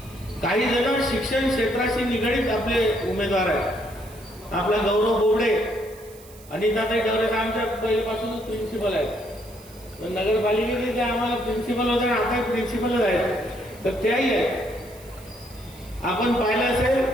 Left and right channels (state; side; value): noise; right; hiss, 22 dB below the sound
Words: काही जण शिक्षण क्षेत्राशी निगडीत आपले उमेदवार आहेत. आपला गौरव बोबडे, अनिताताई डवरे आमच्या पहिल्यापासूनच प्रिन्सिपल आहेत. नगरपालिकेचे ते आम्हाला प्रिन्सिपल होते, आता प्रिन्सिपलच आहेत, तर त्याही आहेत. आपण पाहिलं